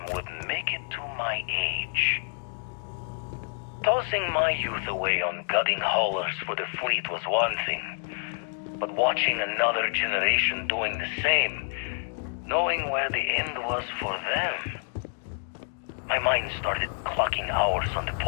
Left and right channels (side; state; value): right; silent; digital silence